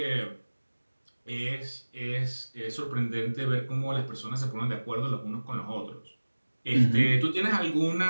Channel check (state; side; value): inverted; both; correlation -1.00